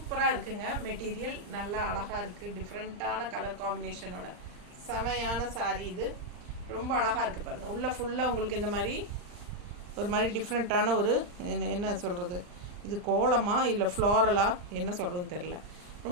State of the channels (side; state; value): left; late; 39 ms